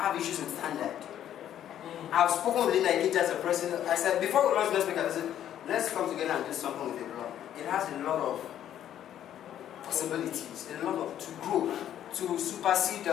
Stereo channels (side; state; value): right; quieter; 10.9 dB